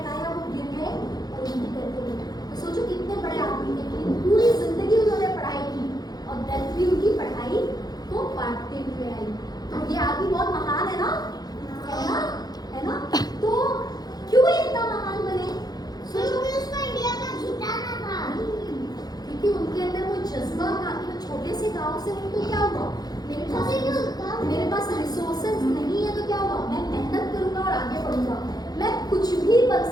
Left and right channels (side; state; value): right; late; 0.19 ms